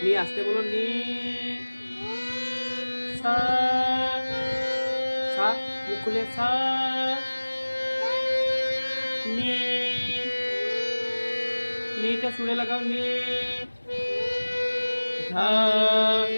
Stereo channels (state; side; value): inverted; both; correlation -1.00